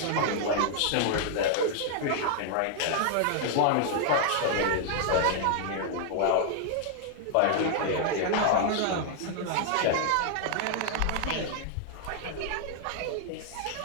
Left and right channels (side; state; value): both; different; correlation 0.00